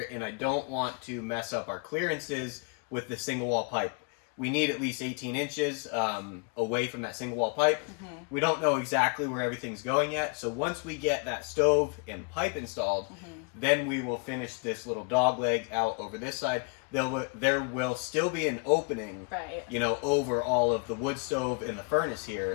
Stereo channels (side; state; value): right; quieter; 35.3 dB